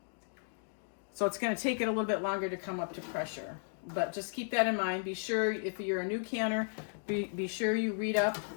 So it's going to take it a little bit longer to come up to pressure. But just keep that in mind. Be sure, if you're a new canner, be sure you read up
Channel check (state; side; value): silent; right; digital silence